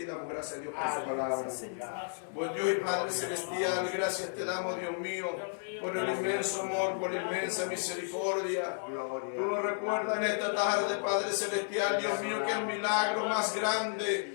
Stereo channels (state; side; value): silent; right; 56 dB below the other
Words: damos gracias a Dios por su Amén. palabra. Buen Dios y Padre Celestial, gracias te damos, Dios mío, por el inmenso amor, por la inmensa misericordia. Tú nos recuerdas en esta tarde, Padre Celestial, Dios mío, que el milagro más